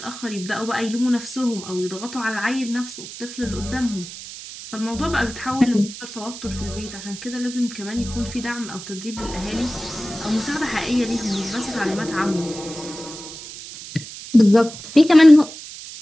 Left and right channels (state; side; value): noise; right; hiss, 12 dB below the sound